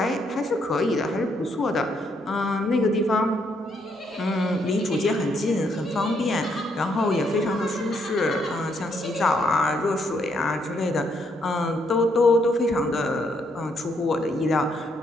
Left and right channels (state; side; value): normal; both; correlation 0.74